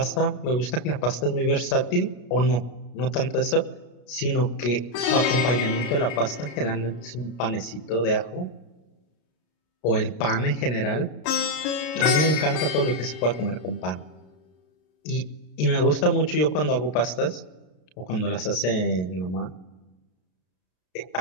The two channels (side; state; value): right; late; 33 ms